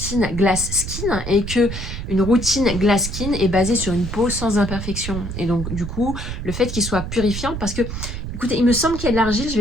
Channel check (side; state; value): right; noise; rumble, 6 dB below the sound